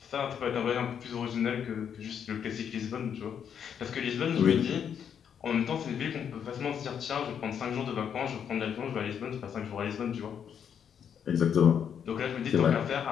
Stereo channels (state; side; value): quieter; right; 8.1 dB